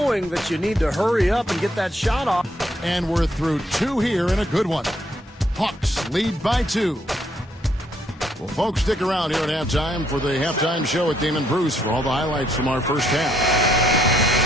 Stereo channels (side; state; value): both; normal; correlation 0.71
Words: that you need to hurry up and get that shot off. And we're through 2 here in a good one. Hawks lead by 2. Well, folks, stick around here at halftime for the halftime show with Damon Bruce for all the highlights from our first half.